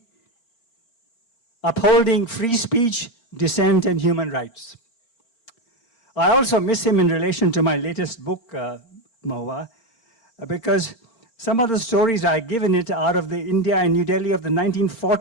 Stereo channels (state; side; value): late; right; 4.4 ms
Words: upholding free speech, dissent, and human rights. I also miss him in relation to my latest book, Mahua, because some of the stories I give in it out of the India and New Delhi of the